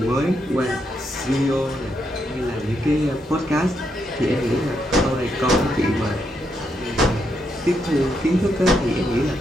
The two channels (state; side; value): normal; both; correlation 0.79